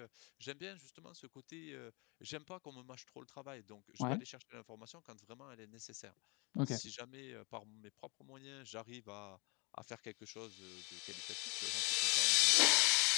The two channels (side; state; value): right; quieter; 29.5 dB